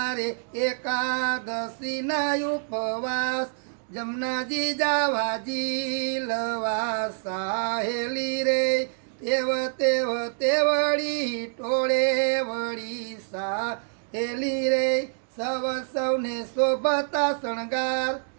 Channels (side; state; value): left; silent; digital silence